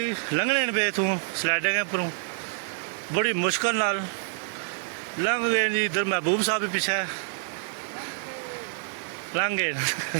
लंघने पे तू स्लाइडिंग पर बड़ी मुश्किल नाल लंघ गए जी। इधर महबूब साहब भी पीछे लंघ गए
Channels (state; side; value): silent; left; 60 dB below the other